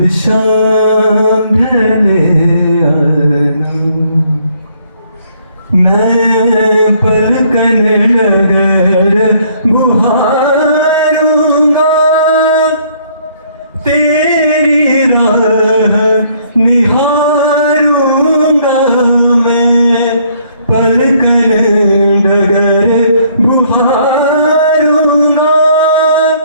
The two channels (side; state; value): both; inverted; correlation -0.65